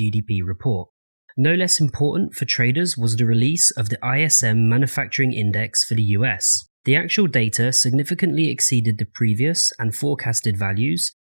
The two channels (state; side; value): inverted; both; correlation -1.00